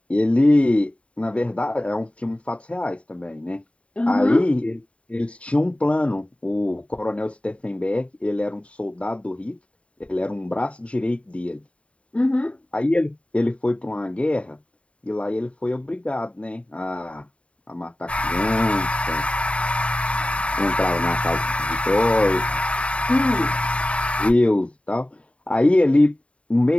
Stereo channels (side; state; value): right; late; 0.062 ms